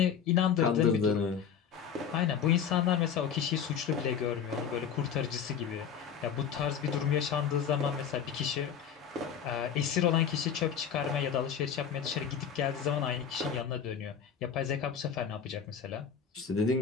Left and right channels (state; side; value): quieter; right; 7.7 dB